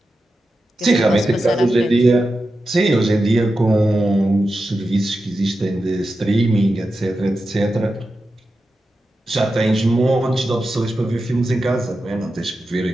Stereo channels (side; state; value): both; normal; correlation 0.91